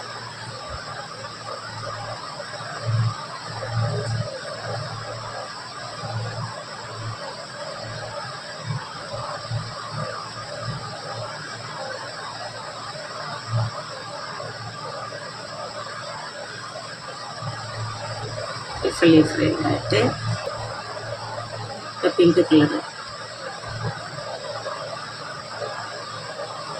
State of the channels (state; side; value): identical; both; correlation 1.00